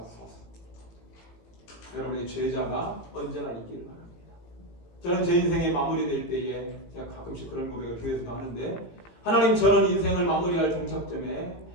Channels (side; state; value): right; late; 18 ms